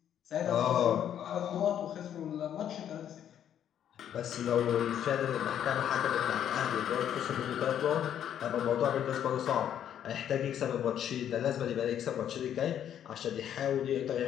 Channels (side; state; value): right; quieter; 9.9 dB